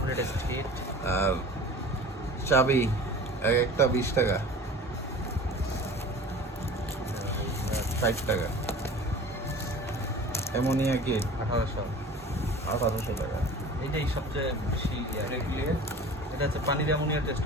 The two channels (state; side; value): normal; both; correlation 0.40